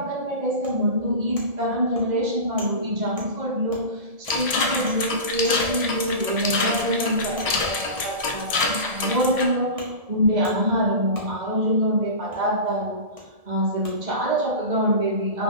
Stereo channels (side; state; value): left; late; 1.7 ms